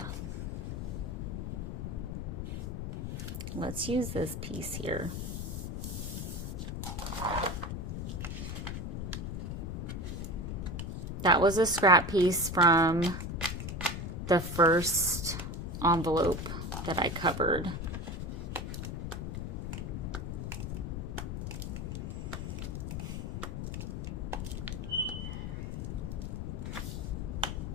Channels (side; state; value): left; noise; rumble, 4 dB below the sound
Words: Let's use this piece here. That was a scrap piece from the first envelope that I covered.